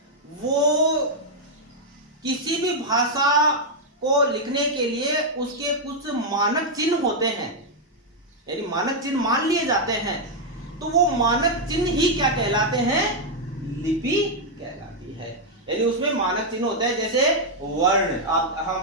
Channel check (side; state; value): both; normal; correlation -0.02